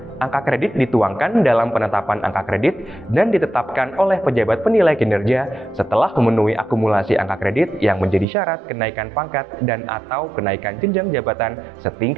Angka kredit dituangkan dalam penetapan angka kredit dan ditetapkan oleh pejabat penilai kinerja setelah memenuhi akumulasi angka kredit yang menjadi syarat kenaikan pangkat dan atau kenaikan jenjang jabatan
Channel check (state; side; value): drops out; left; at 8.2 s